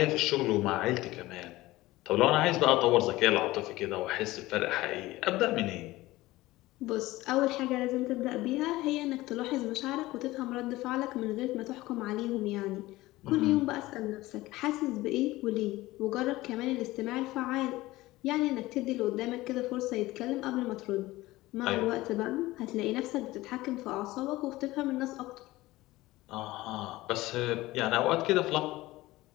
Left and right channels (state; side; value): quieter; right; 18.3 dB